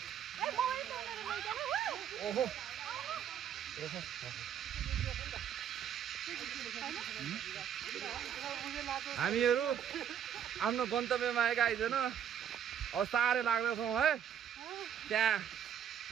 मोबाइल फोनहरु लैजानु ओहो हामीहरू आफ्नो गन्तव्यमा आएका आइजन अब साह्रै लाग्दैछौँ है त्यहाँ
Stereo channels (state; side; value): quieter; left; 9.1 dB